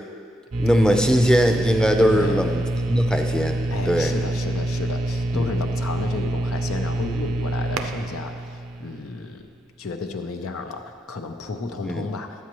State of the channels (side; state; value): both; normal; correlation 0.84